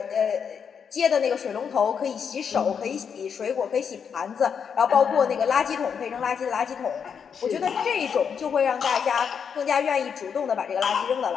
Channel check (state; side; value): quieter; right; 7.0 dB